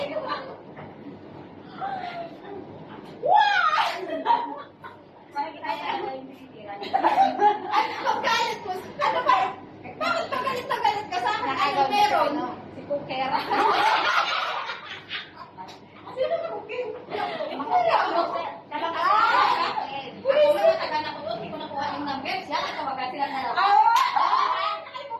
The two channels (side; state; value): both; identical; correlation 1.00